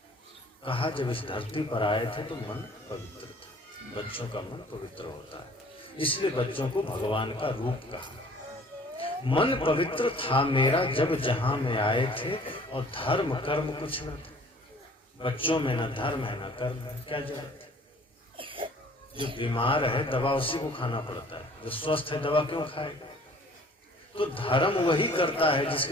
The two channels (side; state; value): both; normal; correlation 0.53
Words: कहा जब इस धरती पर आए थे तो मन पवित्र था। बच्चों का मन पवित्र होता है, इसलिए बच्चों को भगवान का रूप कहा। मन पवित्र था मेरा जब जहां में आए थे, और धर्म कर्म कुछ न थे। बच्चों में न धर्म है न कर्म है, क्या जरूरत है। जो बीमार है दवा उसी को खाना पड़ता है, जो स्वस्थ है दवा क्यों खाएगा। तो धर्म वही करता है